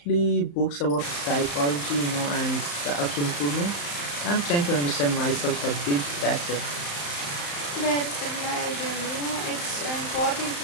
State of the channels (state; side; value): late; right; 35 ms